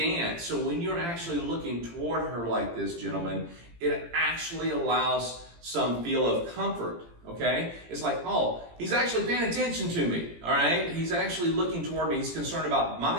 So when you're actually looking toward her like this, gentlemen, it actually allows some feel of comfort. Okay? It's like, oh, he's actually paying attention to me, all right? He's actually looking toward me. He's concerned about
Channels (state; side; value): late; left; 17 ms